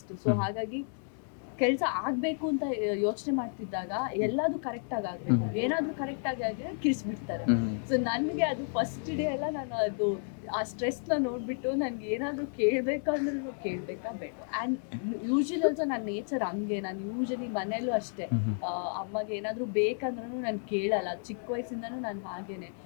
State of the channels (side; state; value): right; silent; 57 dB below the other